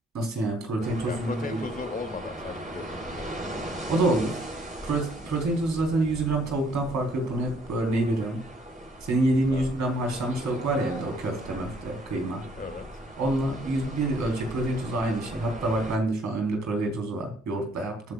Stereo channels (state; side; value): normal; both; correlation 0.64